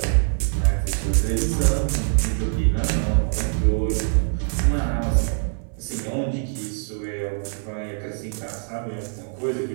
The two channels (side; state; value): left; silent; 63 dB below the other